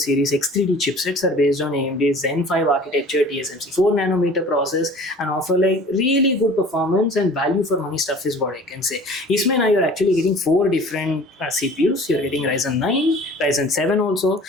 series X3D chipsets are based on AMD's Zen 5 architecture, TSMC 4 nanometer process, and offer like really good performance and value for money stuff is what I can say. Isme now you're actually getting 4 different CPUs. You're getting Ryzen 9, Ryzen 7 also.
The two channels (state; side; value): normal; both; correlation 0.45